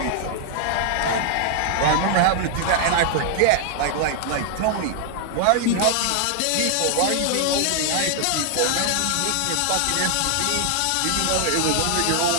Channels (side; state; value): both; different; correlation 0.00